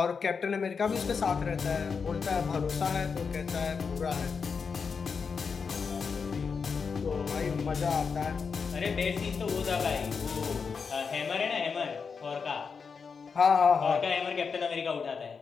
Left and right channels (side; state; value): right; quieter; 5.6 dB